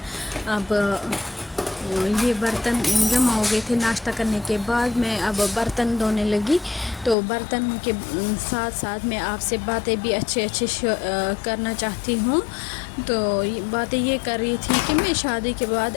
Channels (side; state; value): right; drops out; at 7.2 s